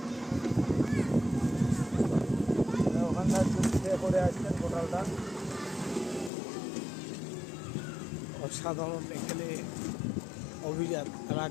ওখানকার করে আসছেন হোটেলটা অসাধারণ। এখানে অভিজাত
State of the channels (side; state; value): right; drops out; at 6.3 s